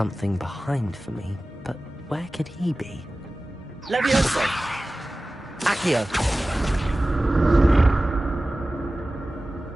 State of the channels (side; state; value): both; normal; correlation 0.96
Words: behind for me, but where could he be? Levioso! Accio!